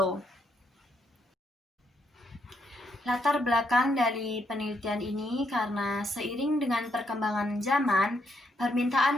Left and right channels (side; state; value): both; normal; correlation 0.76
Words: Latar belakang dari penelitian ini karena seiring dengan perkembangan zaman, permintaan